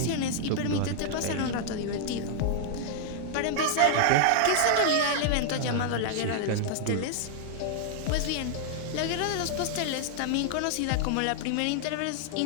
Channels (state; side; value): different; both; correlation -0.01